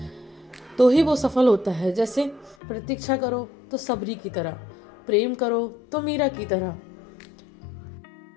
तो ही वो सफल होता है। जैसे प्रतीक्षा करो तो सबरी की तरह, प्रेम करो तो मीरा की तरह,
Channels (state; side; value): drops out; right; at 2.6 s